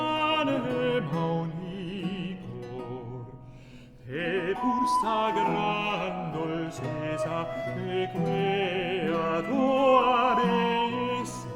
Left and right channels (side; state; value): both; identical; correlation 1.00